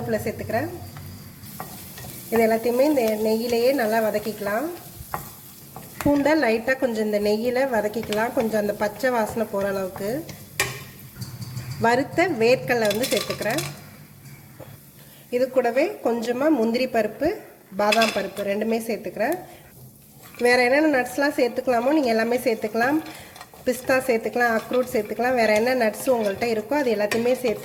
சேர்த்துக்கிறேன். இது எல்லாத்தையுமே இந்த நெய்யிலேயே நல்லா வதக்கிக்கலாம். பூண்டை லைட்டாக கொஞ்சம் இந்த நெய்யில் வதக்கிக்கலாம், கொஞ்சம் அந்த பச்சை வாசனை போகிற அளவுக்கு. வறுத்த வேர்க்கடலை வந்து சேர்த்துக்கிறேன். இது கூடவே கொஞ்சமாக முந்திரி பருப்பு, பாதாம் பருப்பு ரெண்டுமே சேர்த்துக்கிறேன். வேறு என்னென்ன நட்ஸ்லாம் சேர்த்துக்கலாமோ நீங்கள் எல்லாமே சேர்த்துக்கலாம். பிஸ்தா சேர்த்துக்கலாம், அக்ரூட் சேர்த்துக்கலாம். வேறு என்ன நட்ஸ் உங்கள்கிட்ட இருக்கோ அது எல்லாத்தையுமே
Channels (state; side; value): identical; both; correlation 1.00